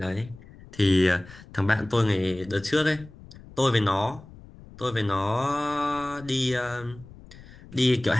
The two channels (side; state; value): left; noise; rumble, 20 dB below the sound